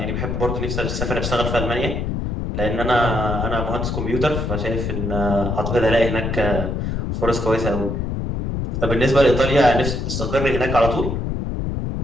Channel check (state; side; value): noise; left; rumble, 2 dB below the sound